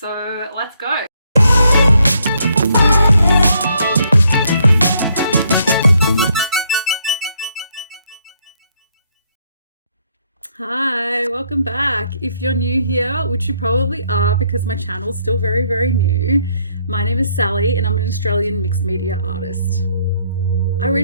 let's go. Hi, welcome back. If you're new here, which you probably are because my channel's still very new, my name is Sally and I'm an Australian mixed media artist. I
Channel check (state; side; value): inverted; both; correlation -0.71